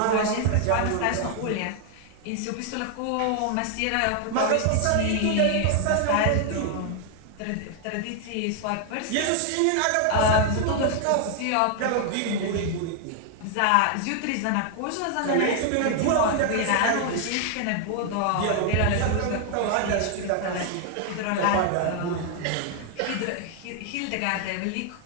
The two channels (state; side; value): different; both; correlation 0.00